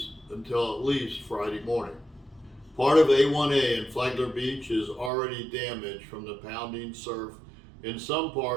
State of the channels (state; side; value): drops out; left; at 5.1 s